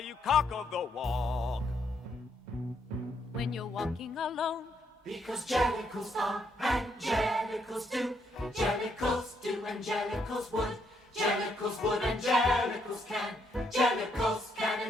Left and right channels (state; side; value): normal; both; correlation 0.74